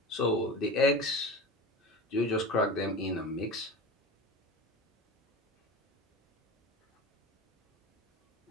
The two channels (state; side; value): normal; both; correlation 0.31